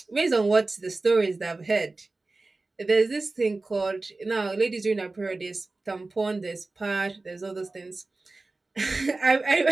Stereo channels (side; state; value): left; quieter; 3.4 dB